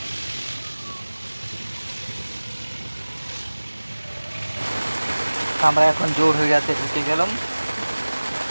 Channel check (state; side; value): inverted; both; correlation -1.00